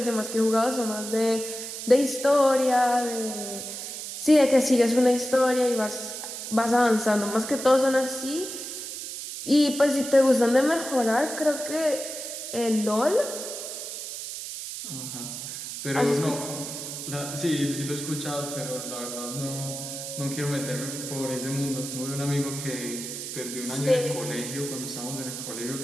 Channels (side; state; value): right; noise; hiss, 8 dB below the sound